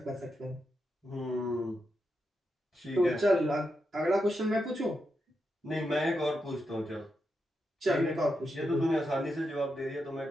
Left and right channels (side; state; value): both; normal; correlation 0.85